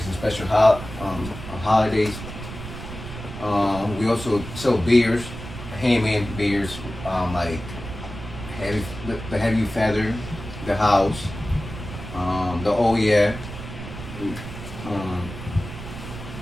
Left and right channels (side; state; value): right; noise; rumble, 11 dB below the sound